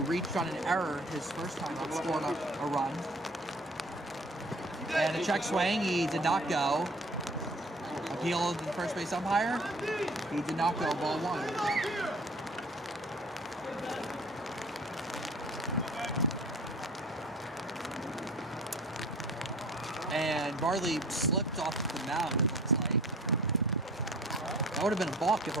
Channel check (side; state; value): both; normal; correlation 0.47